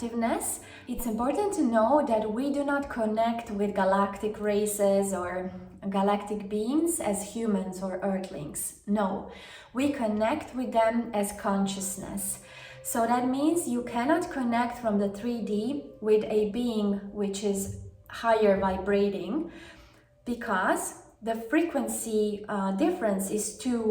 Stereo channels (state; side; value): identical; both; correlation 1.00